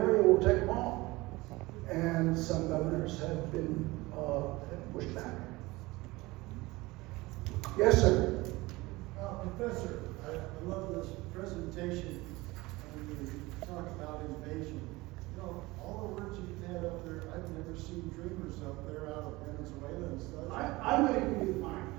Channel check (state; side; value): quieter; left; 21.3 dB